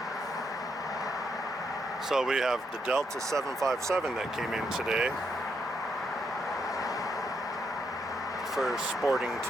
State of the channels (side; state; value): both; normal; correlation 0.78